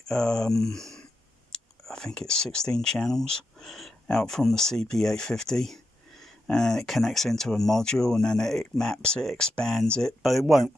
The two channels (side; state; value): both; normal; correlation 0.86